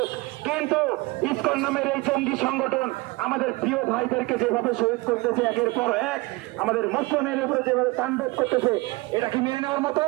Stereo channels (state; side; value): quieter; left; 23.2 dB